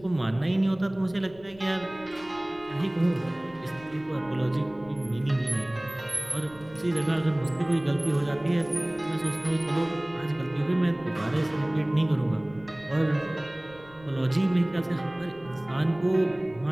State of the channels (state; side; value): noise; left; rumble, 23 dB below the sound